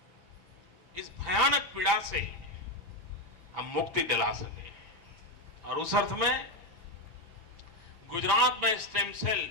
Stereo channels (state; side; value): late; left; 6.0 ms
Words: इस भयानक पीड़ा से हम मुक्ति दिला सके। और उस अर्थ में गुजरात में स्टेम सेल